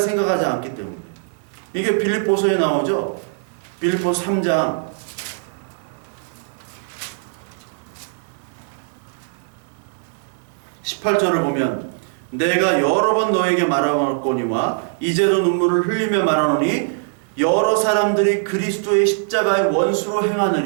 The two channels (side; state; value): left; silent; 65 dB below the other